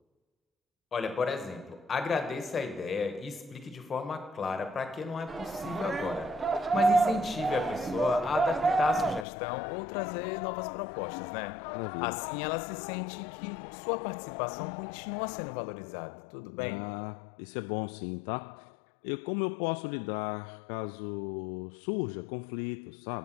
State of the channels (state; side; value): drops out; right; at 9.2 s